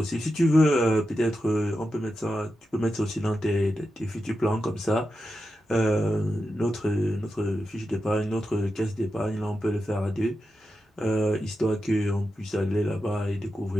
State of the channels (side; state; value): both; normal; correlation 0.89